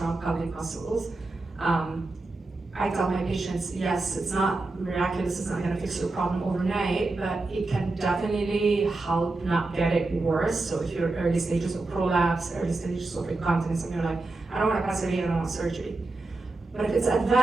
pelvic muscles. I tell my patients, yes, it's not miraculous, it's not going to fix your problem overnight, but it can definitely help not get it worse. So if you're early stages of prolapse, early stages of incontinence, and you're like, I don't want a pessary, I don't want surgery. But if it's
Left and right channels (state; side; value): quieter; left; 3.2 dB